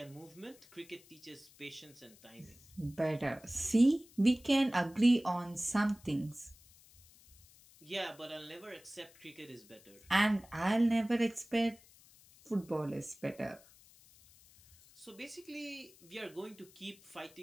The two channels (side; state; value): left; noise; hiss, 25 dB below the sound